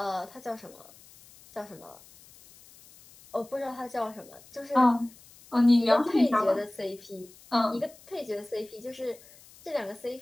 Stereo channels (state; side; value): noise; left; hiss, 23 dB below the sound